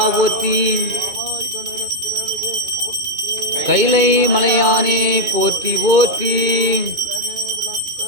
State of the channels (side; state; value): left; late; 2.4 ms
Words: போற்றி ஆவாய் கனகத்திரளே போற்றி கைலை மலையானே போற்றி போற்றி